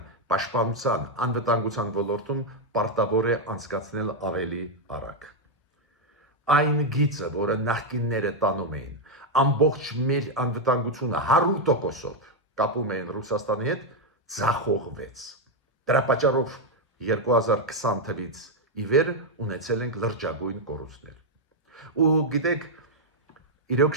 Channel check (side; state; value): both; normal; correlation 0.01